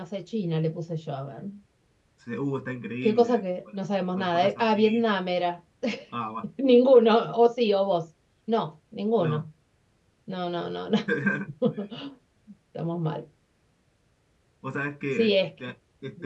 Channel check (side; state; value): both; identical; correlation 1.00